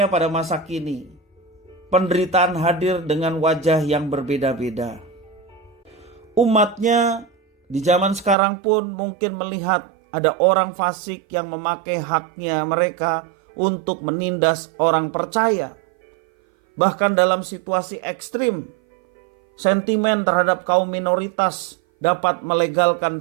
pada masa kini, penderitaan hadir dengan wajah yang berbeda-beda. Umatnya di zaman sekarang pun mungkin melihat ada orang fasik yang memakai haknya mereka untuk menindas orang percaya. Bahkan dalam situasi ekstrim, sentimen terhadap kaum minoritas dapat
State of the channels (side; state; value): left; drops out; at 8.3 s